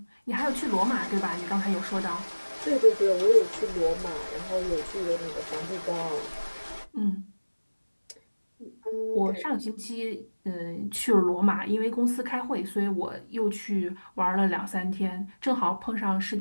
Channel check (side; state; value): both; inverted; correlation -1.00